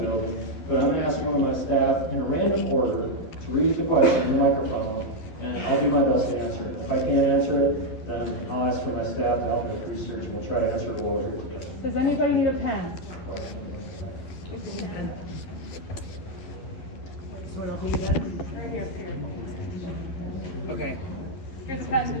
building. But I'm going to ask you and my staff in a random order to read the question in the microphone, and I'll do my best to answer it. If I can't answer it, then I'll ask for my staff to help me with research, and we'll try to answer it all here together. Does anybody need a pen? Okay. Here's the pen.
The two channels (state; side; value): late; right; 12 ms